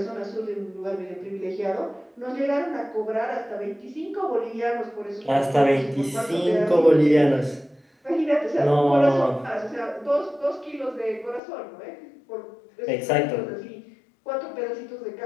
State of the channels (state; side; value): drops out; right; at 11.4 s